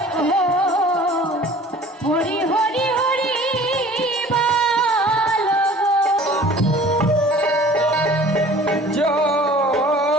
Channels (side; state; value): both; normal; correlation 0.47